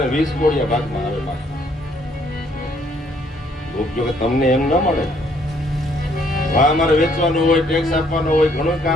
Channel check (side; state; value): both; normal; correlation 0.66